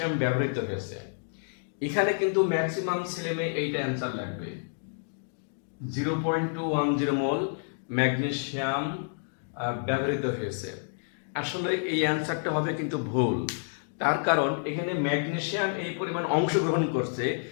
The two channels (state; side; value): silent; right; digital silence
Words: ব্যবহৃত হয়েছে। এখানে কিন্তু ম্যাক্সিমাম ছেলেমেয়ে এইটা অ্যান্সার লাগবে। 0.210 মোল ম্যাগনেসিয়াম ব্যবহৃত হয়েছে। আসলে এই অ্যান্সারটা হবে কিন্তু ভুল। তার কারণ এখানে ম্যাগনেসিয়াম এই পরিমাণ অংশগ্রহণ করছে,